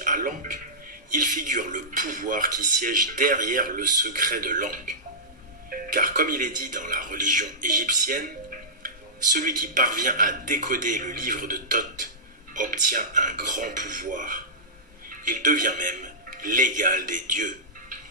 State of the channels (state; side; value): normal; both; correlation -0.16